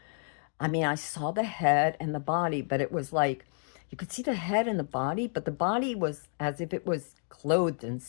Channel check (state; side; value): silent; right; 57 dB below the other